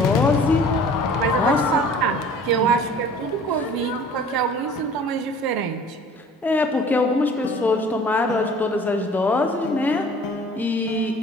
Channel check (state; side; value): normal; both; correlation 0.49